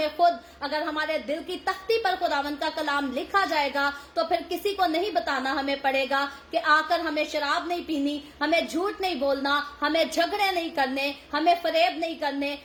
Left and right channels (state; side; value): identical; both; correlation 1.00